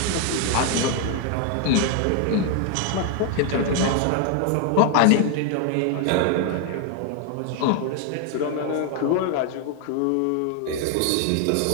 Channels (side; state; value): both; different; correlation 0.00